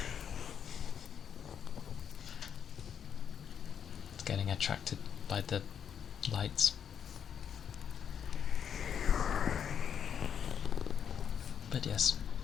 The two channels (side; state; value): right; quieter; 8.1 dB